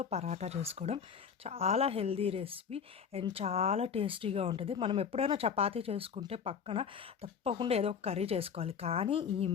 పరాటా చేసుకోవడం చాలా హెల్దీ రెసిపీ అండ్ చాలా టేస్టీగా ఉంటుంది. మనం ఎప్పుడైనా చపాతీ చేసుకుంటే పక్కన తప్పకుండా ఏదో ఒక కర్రీ చేసుకోవాలి. కానీ ఈ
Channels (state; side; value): quieter; right; 6.9 dB